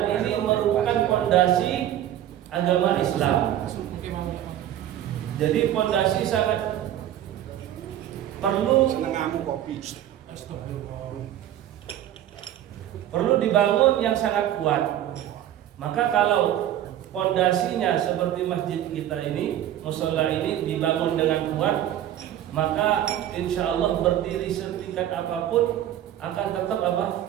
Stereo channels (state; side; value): quieter; left; 11.8 dB